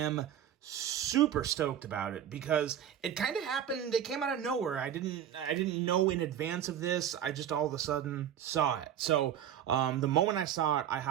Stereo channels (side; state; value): left; quieter; 9.9 dB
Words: super stoked about it because it kind of happened. It came out of nowhere. I didn't know in advance of this. I just all of a sudden saw it. So the moment I saw it, I